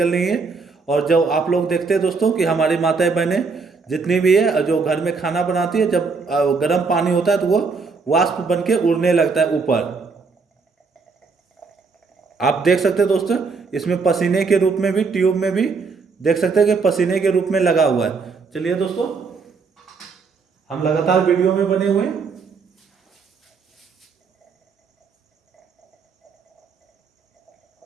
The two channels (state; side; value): quieter; left; 4.7 dB